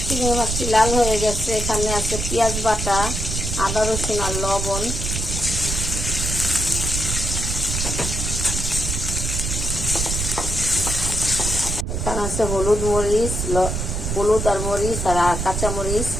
চিংড়ি মাছটি লাল হয়ে গেছে। এখানে আছে পেঁয়াজ বাটা, আদা রসুন আর লবণ। এখানে আছে হলুদ আর মরিচ আর কাঁচা মরিচ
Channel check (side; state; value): right; noise; rumble, 2 dB below the sound